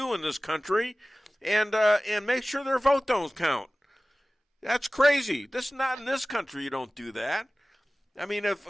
in this country, and make sure their vote don't count. That's crazy. This is not in this country. You don't do that. I mean,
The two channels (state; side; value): normal; both; correlation 0.97